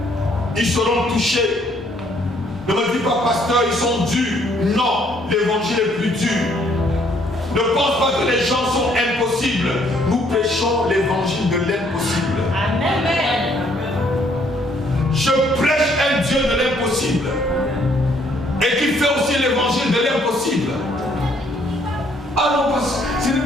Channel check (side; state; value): both; normal; correlation 0.66